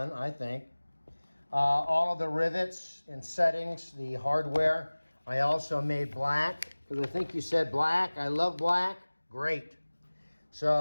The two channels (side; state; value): both; inverted; correlation -1.00